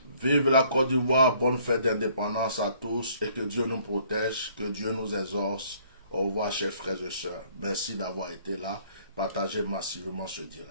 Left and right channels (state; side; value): inverted; both; correlation -0.61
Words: Vive la Côte d'Ivoire, bonne fête d'indépendance à tous et que Dieu nous protège, que Dieu nous exauce. Au revoir, chers frères et sœurs. Merci d'avoir été là. Partagez massivement ce